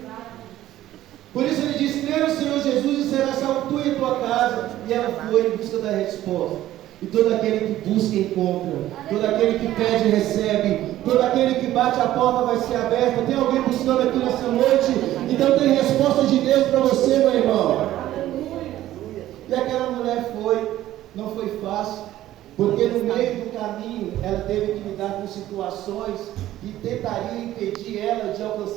Por isso Ele diz: crê no Senhor Jesus e será salvo tu e tua casa. E ela foi em busca da resposta. E todo aquele que busca encontra, todo aquele que pede recebe, todo aquele que bate a porta vai ser aberta. Tem alguém buscando aqui nessa noite? Então tem resposta de Deus para você, meu irmão. E aquela mulher foi, não foi fácil, porque no meio do caminho ela teve que lidar com situações que tentariam impedir ela de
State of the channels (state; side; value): quieter; left; 14.0 dB